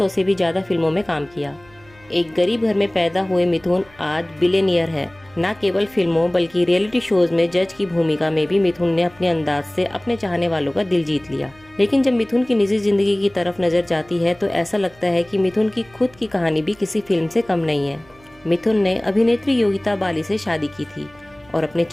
से भी ज्यादा फिल्मों में काम किया। एक गरीब घर में पैदा हुए मिथुन आज बिलियनियर है। न केवल फिल्मों बल्कि रियलिटी शोज में जज की भूमिका में भी मिथुन ने अपने अंदाज से अपने चाहने वालों का दिल जीत लिया। लेकिन जब मिथुन की निजी जिंदगी की तरफ नजर जाती है तो ऐसा लगता है कि मिथुन की खुद की कहानी भी किसी फिल्म से कम नहीं है। मिथुन ने अभिनेत्री योगिता बाली से शादी की थी और अपने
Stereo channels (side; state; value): right; noise; hum, 27 dB below the sound